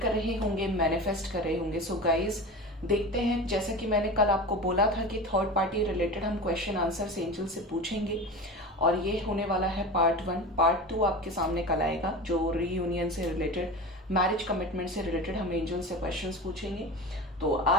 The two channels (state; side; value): normal; both; correlation 0.30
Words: कर रहे होंगे, मैनिफेस्ट कर रहे होंगे। सो गाइज देखते हैं, जैसा कि मैंने कल आपको बोला था कि थर्ड पार्टी रिलेटेड हम क्वेश्चन आंसर्स एंजल से पूछेंगे और ये होने वाला है पार्ट 1। पार्ट 2 आपके सामने कल आएगा, जो रीयूनियन से रिलेटेड, मैरिज कमिटमेंट से रिलेटेड हम एंजल से क्वेश्चंस पूछेंगे। तो